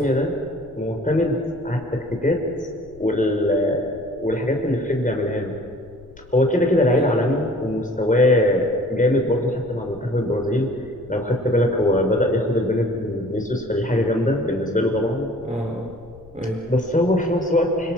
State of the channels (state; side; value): noise; left; rumble, 23 dB below the sound